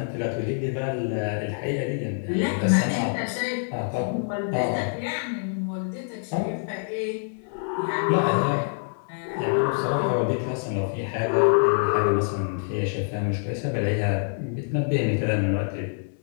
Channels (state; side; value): silent; right; 61 dB below the other